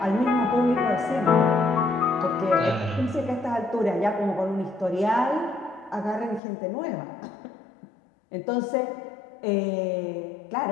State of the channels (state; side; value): drops out; right; at 6.4 s